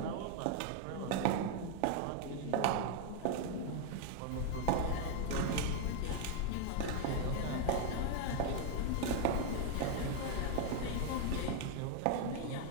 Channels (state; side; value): different; both; correlation 0.00